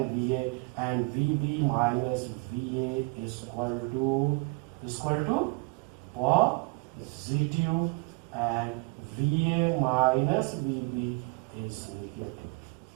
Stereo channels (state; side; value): quieter; left; 30.6 dB